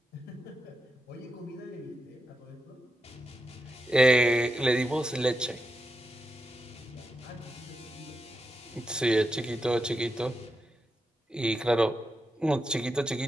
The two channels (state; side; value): normal; both; correlation 0.87